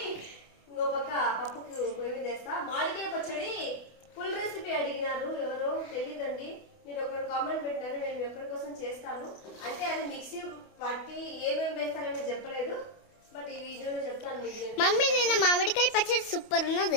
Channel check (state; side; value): late; right; 28 ms